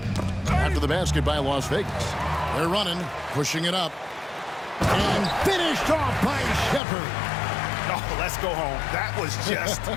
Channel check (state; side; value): drops out; right; at 6.8 s